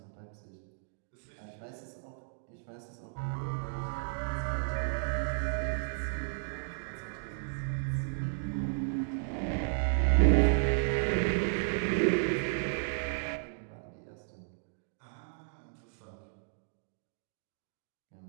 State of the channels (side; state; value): left; silent; digital silence